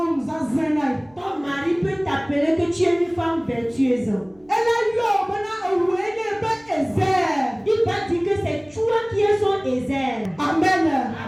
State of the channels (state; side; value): noise; right; hum, 30 dB below the sound